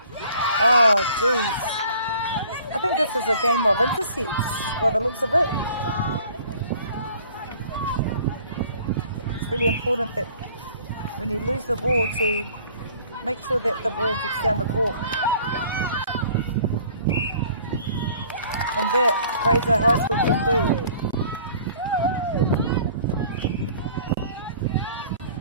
Oh, jeez. I think this is a game of intercepts by the looks of it. It's really important that when you lose the ball to make sure that the ball gets down the court. And that Fraser High School can do.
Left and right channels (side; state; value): both; inverted; correlation -0.53